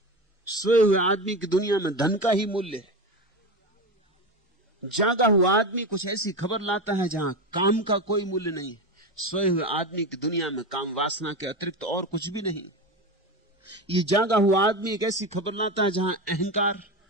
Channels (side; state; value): both; normal; correlation 0.21